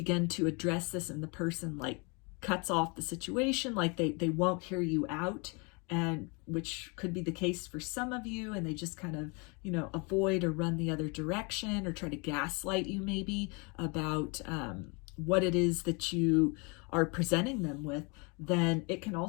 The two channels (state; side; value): quieter; right; 31.2 dB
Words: to address this and the person like cuts off the situation, like they won't hear you out, and which could be the case for some of you, and they just kind of, avoid or run the other direction or try to gaslight you maybe about what it is that you are presenting them with, then it can